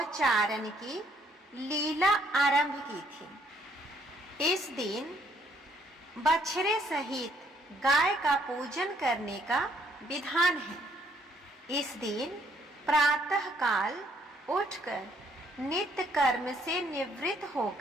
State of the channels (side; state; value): both; normal; correlation 0.67